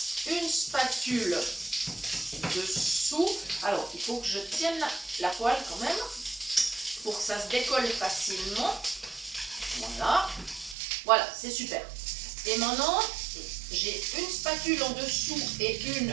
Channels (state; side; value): drops out; left; at 10.8 s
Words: une spatule dessous. Alors, il faut que je tienne la poêle quand même pour que ça se décolle facilement. Voilà, voilà, c'est super. Et maintenant, j'ai une spatule en dessous et une